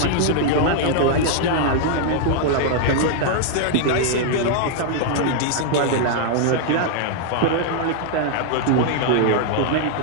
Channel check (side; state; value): both; different; correlation 0.00